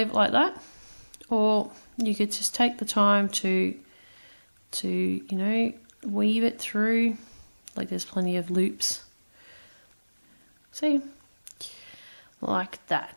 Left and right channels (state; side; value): inverted; both; correlation -1.00